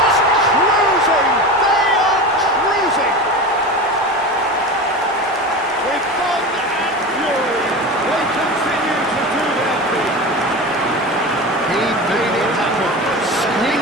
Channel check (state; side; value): normal; both; correlation 0.28